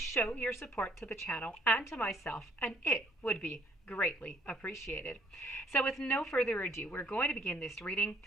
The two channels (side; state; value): both; normal; correlation 0.63